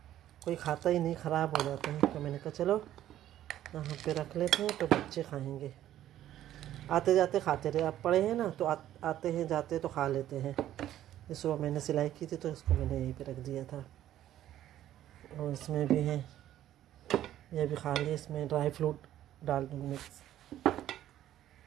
कोई खाता ही नहीं, ख़राब हो जाते हैं। तो मैंने कहा चलो यहाँ पे रख लेते हैं तो बच्चे खाएंगे, आते जाते खाते रहे। आप पड़े हैं ना तो आते हैं जाते तो खा लेते हैं। ये सुबह मैंने सिलाई की थी तो इसको मैंने यहीं पे रख दिया था। और इसमें भी है, ये भी खा लिए। इसमें ड्राई फ्रूट डाल दूँगी मिक्स,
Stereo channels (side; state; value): left; quieter; 12.4 dB